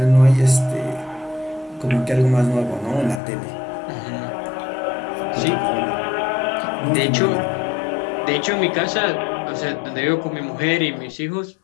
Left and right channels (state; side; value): drops out; right; at 3.2 s